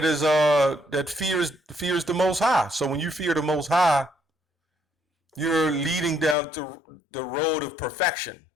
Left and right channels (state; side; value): drops out; right; at 6.4 s